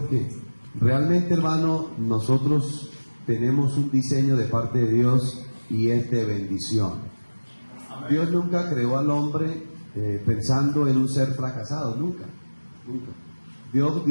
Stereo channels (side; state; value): both; inverted; correlation -1.00